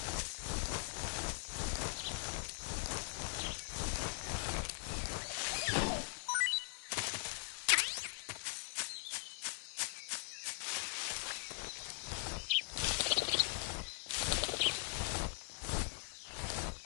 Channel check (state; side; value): silent; right; 50 dB below the other